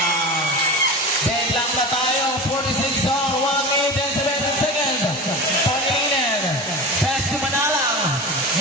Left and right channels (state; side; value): normal; both; correlation 0.29